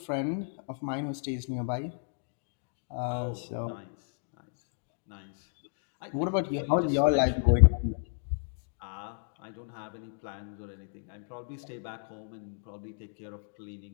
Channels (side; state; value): right; silent; digital silence